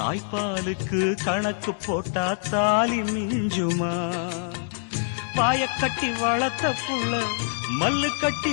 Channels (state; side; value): silent; right; digital silence